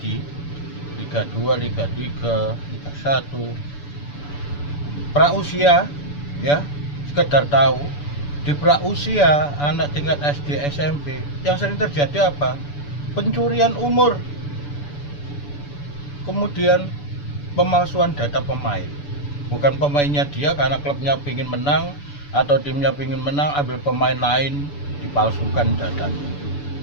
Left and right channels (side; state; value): right; late; 6.9 ms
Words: Liga 2, Liga 3, Liga 1. Prausia ya, sekedar tahu di prausia anak tingkat SD SMP yang sering terjadi apa? Pencurian umur. Kemudian pemalsuan data pemain. Bukan pemainnya dia karena klubnya ingin menang atau timnya ingin menang, ambil pemain lain dipalsukan datanya.